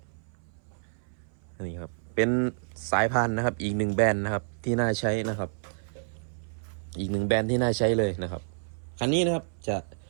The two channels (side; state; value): left; silent; 58 dB below the other